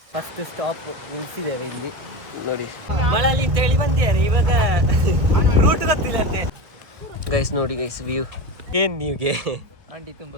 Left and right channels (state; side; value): late; left; 1.5 ms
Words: First stop ನಿಲ್ಸಿದ್ದೇವೆ ಇಲ್ಲಿ ನೋಡಿ. ಮಳಲಿ ಅಂತ ಹೇಳಿ ಬಂದಿದ್ದಾರೆ, ಇವಾಗ ರೂಟ್ ಗೊತ್ತಿಲ್ಲ ಅಂತೆ. ಗೈಸ್ ನೋಡಿ ಗೈಸ್ ವ್ಯೂ ಏನ್ ನೀವ್ಗೆ ಅಂಡಿ ತುಂಬಾ